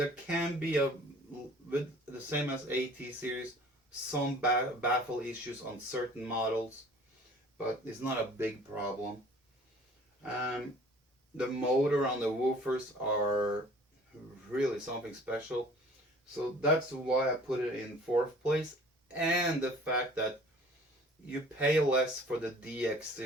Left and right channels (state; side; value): normal; both; correlation 0.50